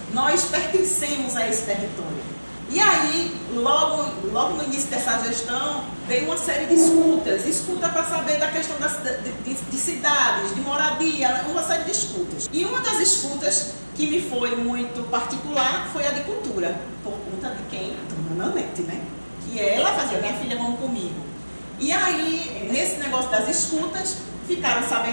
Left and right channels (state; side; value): inverted; both; correlation -1.00